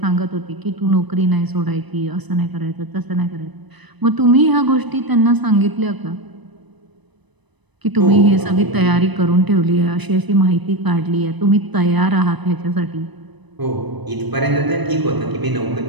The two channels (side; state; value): left; late; 1.0 ms